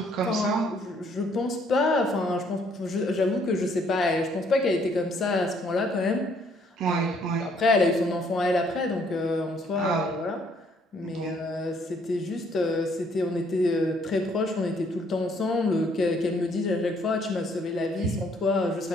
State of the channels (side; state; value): both; normal; correlation 0.65